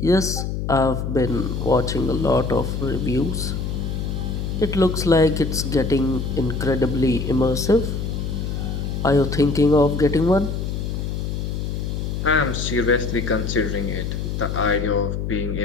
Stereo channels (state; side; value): noise; left; hum, 3 dB below the sound